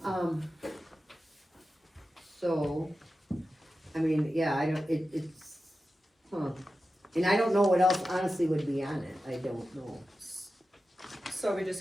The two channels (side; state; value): both; normal; correlation 0.93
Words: So, I mean, yeah, I don't, it's, and I don't know what else honestly would be on it, I don't know. So are we